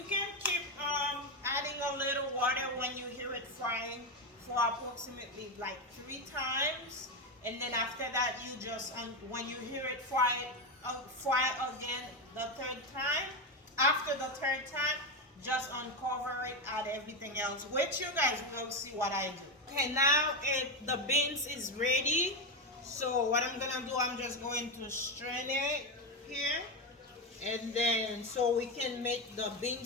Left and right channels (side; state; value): both; normal; correlation 0.11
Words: can keep adding a little water when you hear it frying for approximately like 3 times. And then after that, you just, when you hear it fry again the 3rd time. After the 3rd time, just uncover it, add everything else, which you guys will see what I do. Okay, now the beans is ready. So what I'm gonna do, I'm just going to strain it here, and then so we can make the bean